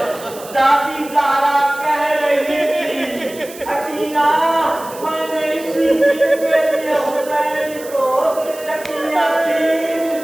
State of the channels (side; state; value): right; noise; hiss, 17 dB below the sound